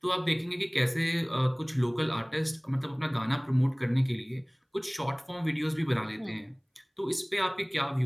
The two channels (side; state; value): both; identical; correlation 1.00